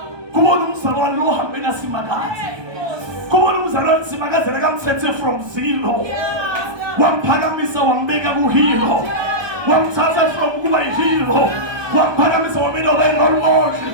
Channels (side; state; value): left; late; 1.2 ms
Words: Come on, Umsalwan lo hambena simagazi. Come on, Umsalwan simagazi nakamthethe from zero. Wamphakamisa wambeka kuhilo. Wamthatha from kuba ihilo. Wamphakamisa wambeka role model.